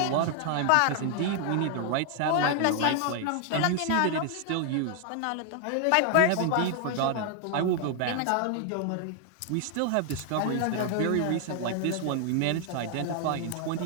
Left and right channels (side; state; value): both; different; correlation 0.00